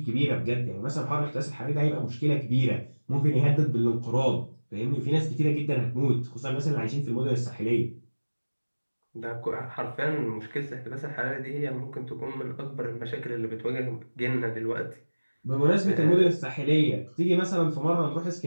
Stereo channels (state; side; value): inverted; both; correlation -1.00